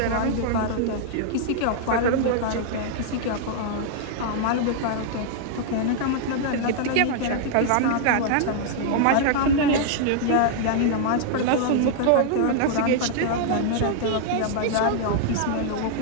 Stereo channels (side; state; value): both; different; correlation -0.01